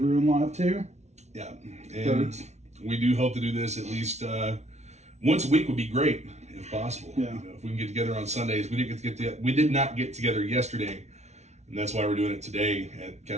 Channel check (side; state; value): left; late; 0.32 ms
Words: Ruin Live 2. Yeah. And we do hope to do this at least once a week would be great if possible. Yeah. If we can get together on Sundays. We did not get together yesterday, and that's why we're doing it today at